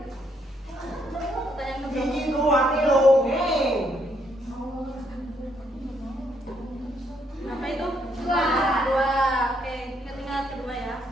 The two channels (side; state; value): both; normal; correlation 0.73